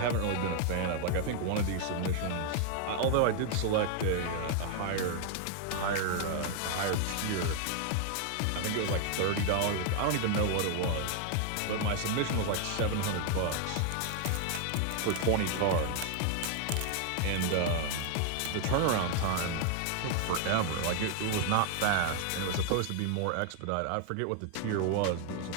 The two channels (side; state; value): both; different; correlation 0.00